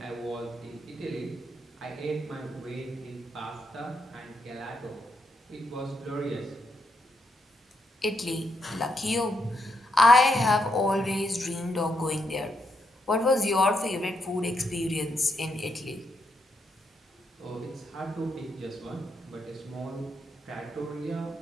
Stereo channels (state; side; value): normal; both; correlation 0.80